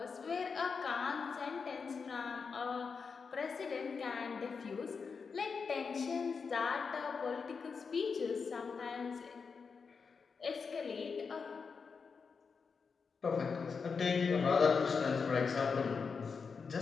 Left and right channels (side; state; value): right; quieter; 5.4 dB